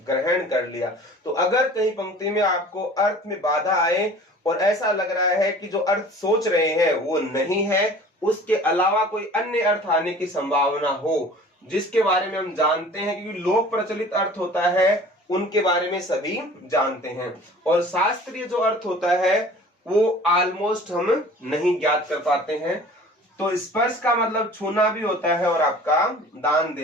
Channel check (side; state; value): both; normal; correlation 0.45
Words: ग्रहण कर लिया। तो अगर कहीं पंक्ति में आपको अर्थ में बाधा आए और ऐसा लग रहा है कि जो अर्थ सोच रहे हैं वो नहीं है, उसके अलावा कोई अन्य अर्थ आने की संभावना हो जिसके बारे में हम जानते हैं, क्योंकि लोक प्रचलित अर्थ होता है उनके बारे में सभी जानते हैं, और शास्त्रीय जो अर्थ होता है वो ऑलमोस्ट हम नहीं ज्ञात कर पाते हैं। तो स्पर्श का मतलब छूना भी होता है और आपका दान